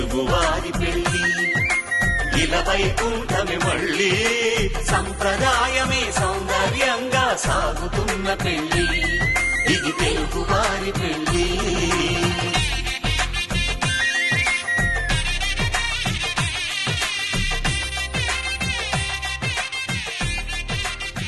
పెళ్లి ఇలా వైకుంఠమి మళ్ళీ. సంప్రదాయమే సౌందర్యంగా సాగుతున్న పెళ్లి. ఇది తెలుగువారి పెళ్లి.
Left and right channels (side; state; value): both; identical; correlation 1.00